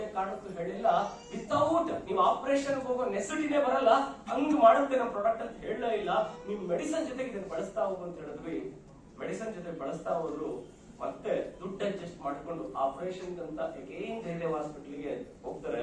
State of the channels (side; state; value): both; identical; correlation 1.00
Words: ಕಾರಣಕ್ಕೂ ಹೇಳಿಲ್ಲ ವಿತೌಟ್ ನೀವು ಆಪರೇಷನ್ ಹೋಗೋ ನೆಸಿಟಿನೇ ಬರಲ್ಲ, ಹಂಗ್ ಮಾಡುತ್ತೆ ನಮ್ಮ ಪ್ರಾಡಕ್ಟ್ ಅಂತ ಹೇಳಲೇ ಇಲ್ಲ. ನೀವು ಮೆಡಿಸಿನ್ ಜೊತೆಗೆ ಇದನ್ನ ಬಳಸ್ತಾ ಹೋಗು ಅಂತ ಹೇಳಿದ್ವಿ. ಮೆಡಿಸಿನ್ ಜೊತೆ ಬಳಸ್ತಾ ಹೋದ್ರು. ಮತ್ತೆ ದುಡ್ಡು ಅಡ್ಜಸ್ಟ್ ಮಾಡ್ಕೊಂಡು ಆಪರೇಷನ್ ಅಂತ ಅಗೇನ್ ಜಯದೇವ್ ಹಾಸ್ಪಿಟಲ್ಗೆ ಹೋಗ್ತಾರೆ.